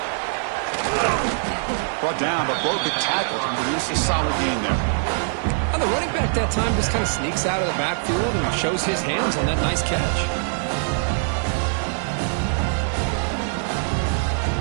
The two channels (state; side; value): silent; left; digital silence